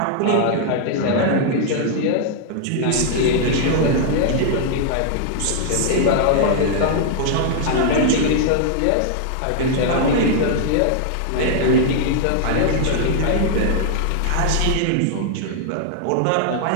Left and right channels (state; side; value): different; both; correlation 0.00